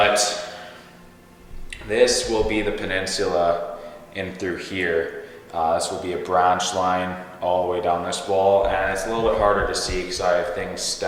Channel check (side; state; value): both; identical; correlation 1.00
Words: this will be the peninsula in through here. This will be a branch line all the way down this wall, and it's a little bit harder to see because I have things